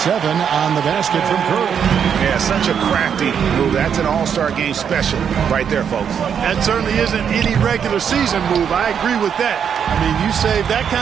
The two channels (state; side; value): quieter; left; 7.8 dB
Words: on the basket from Curry. Yeah, such a crafty move. That's an All-Star Game special right there, folks. That certainly isn't any regular season move. I agree with that. I mean, you save that